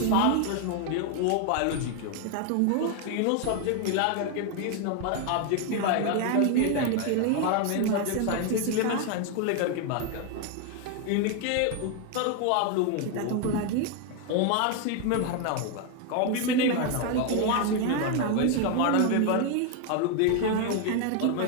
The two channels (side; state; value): both; different; correlation 0.01